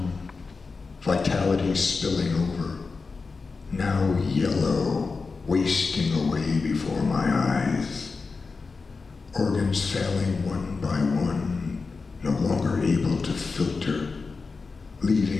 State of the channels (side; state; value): right; quieter; 4.4 dB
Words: vitality spilling over, now yellow, wasting away before my eyes, organs failing one by one, no longer able to filter,